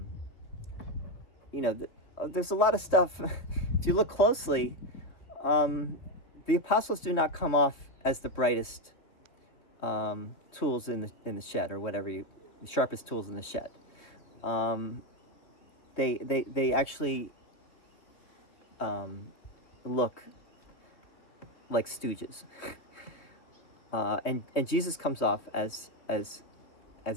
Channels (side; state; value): right; late; 3.2 ms